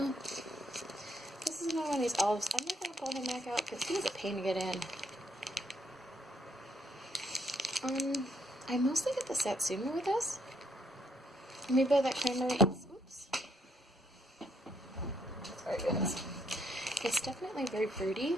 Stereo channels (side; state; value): both; normal; correlation 0.72